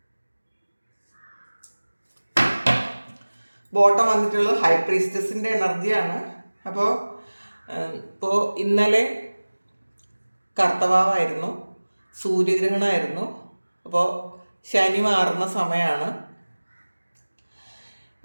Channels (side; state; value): both; inverted; correlation -1.00